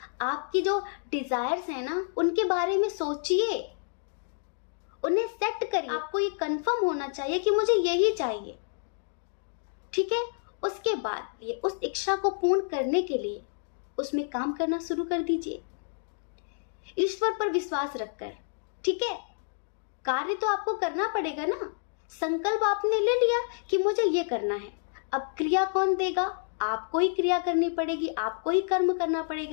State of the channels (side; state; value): right; silent; digital silence